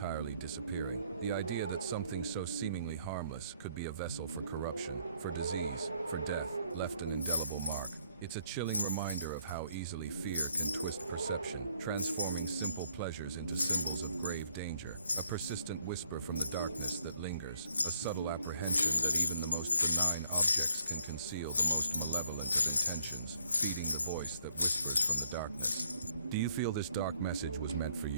disappearing. The idea that something so seemingly harmless could be a vessel for corruption, for disease, for death, left an indelible mark. It's a chilling reminder of how easily fear can twist perception, transforming simple pleasures into symbols of grave danger. A persistent whisper from the darkness that lingers, a subtle apprehension that even the most benign objects can conceal the most malevolent of intentions, feeding the voice that whispers from the darkness. Do you feel this dark message was meant for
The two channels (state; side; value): inverted; both; correlation -0.68